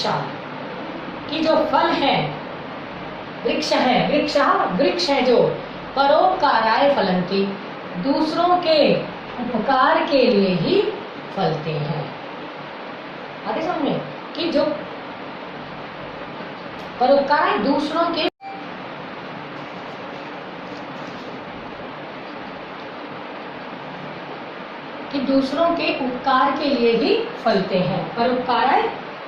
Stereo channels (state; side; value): identical; both; correlation 1.00